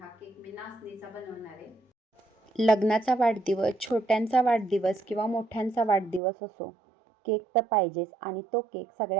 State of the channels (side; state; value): left; drops out; at 6.2 s